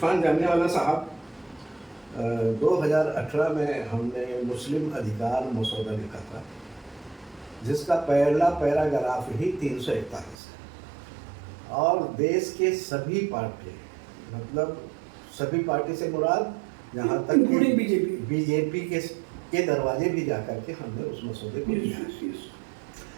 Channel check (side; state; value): left; drops out; at 10.4 s